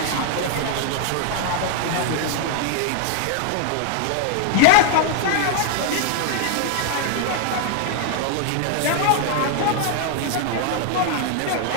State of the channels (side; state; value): both; different; correlation 0.00